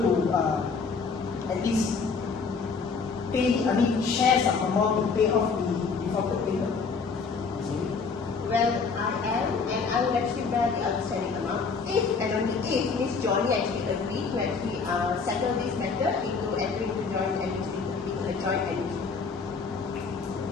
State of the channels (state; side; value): quieter; right; 5.0 dB